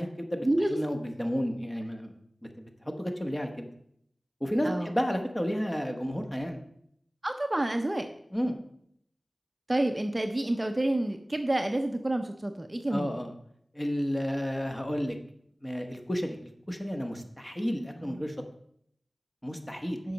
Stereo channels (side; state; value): both; normal; correlation 0.98